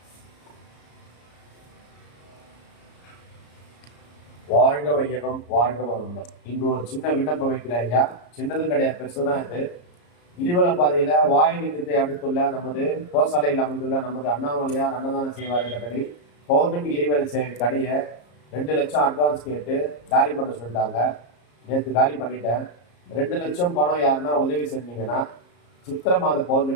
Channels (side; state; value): right; late; 34 ms